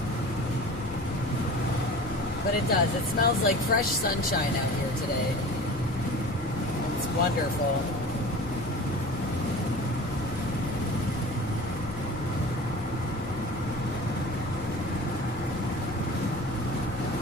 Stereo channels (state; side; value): normal; both; correlation 0.39